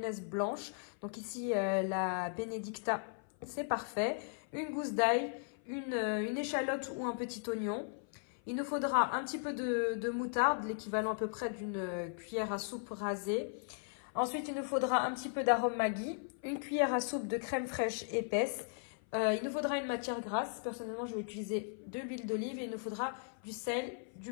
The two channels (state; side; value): silent; right; 53 dB below the other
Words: blanche. Donc ici, la Benedicta, c'est parfait. Une gousse d'ail, une échalote ou un petit oignon. Il nous faudra un petit peu de moutarde, l'équivalent à peu près d'une cuillère à soupe rasée. Ensuite, il nous faudra un petit peu d'arôme Maggi, une cuillère à soupe de crème fraîche épaisse. Il nous faudra une matière grasse. Personnellement, je vais utiliser de l'huile d'olive et il nous faudra du sel,